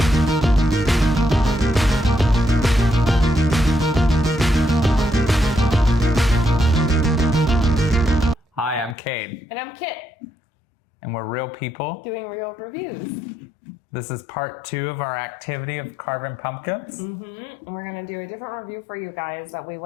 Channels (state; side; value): drops out; right; at 9.0 s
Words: Hi, I'm Cade. And I'm Kit, And we're real people. doing real reviews. This is part 2 of our activity of carving pumpkins. And we're going to do a different review for you guys that we